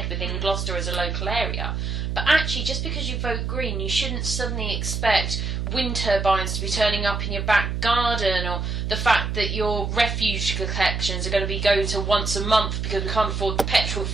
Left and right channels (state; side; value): noise; right; hum, 2 dB below the sound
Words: within Gloucester as a local area. But actually, just because you vote Green, you shouldn't suddenly expect wind turbines to be turning up in your back garden, or the fact that your refuse collections are going to be going to once a month because we can't afford the petrol